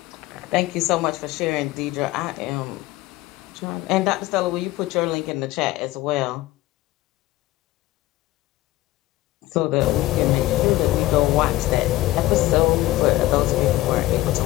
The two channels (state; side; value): quieter; right; 17.2 dB